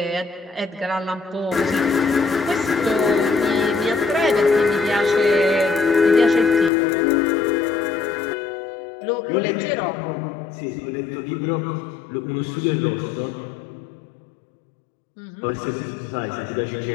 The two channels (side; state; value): right; drops out; at 6.7 s